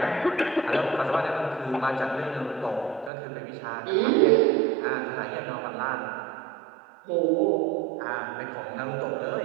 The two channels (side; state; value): left; drops out; at 3.1 s